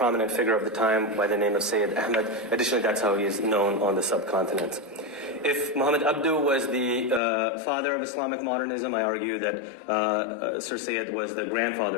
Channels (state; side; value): drops out; right; at 7.2 s